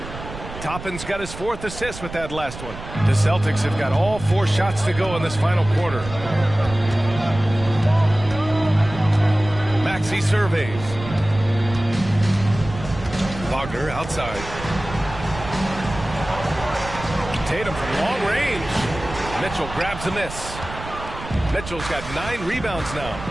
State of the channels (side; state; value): right; noise; rumble, 12 dB below the sound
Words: Toppin's got his 4th assist with that last one. The Celtics have got all 4 shots to go in this final quarter. Maxey surveys. Wagner outside. Tatum from long range. Mitchell grabs a miss. Mitchell's got 9 rebounds now.